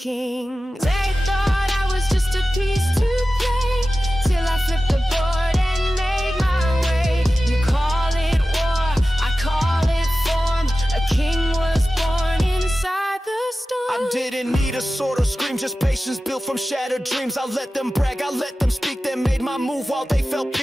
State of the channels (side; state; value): both; normal; correlation 0.95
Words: They thought I was just a piece to play, till I flipped the board and made my way. You call it war, I call it form. A king was born inside the storm. I didn't need a sword or scream, just patience built from shattered dreams. I let them brag, I let them speak, they made my move while they felt